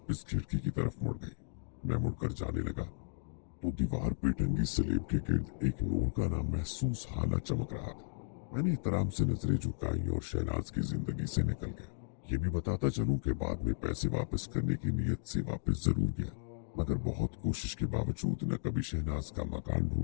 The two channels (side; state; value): right; silent; digital silence